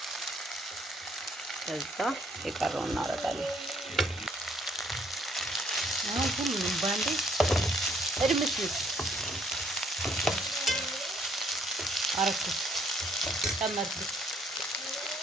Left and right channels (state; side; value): normal; both; correlation 0.66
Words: ከዛ የቀረውን እናደርጋለን። አሁን ሁሉንም ባንዴ እድምስምስ አረኩት፣ ጨመርኩት።